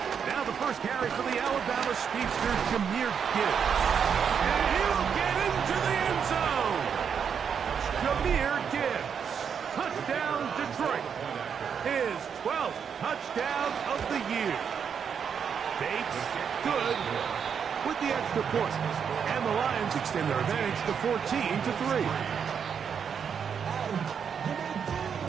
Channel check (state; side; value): quieter; left; 7.1 dB